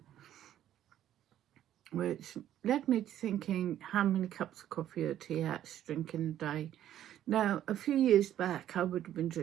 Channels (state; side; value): quieter; left; 11.6 dB